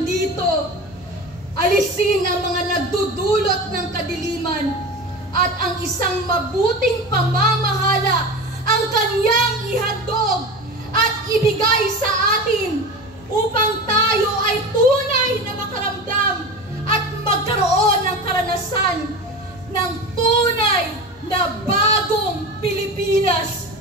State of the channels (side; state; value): both; normal; correlation 0.29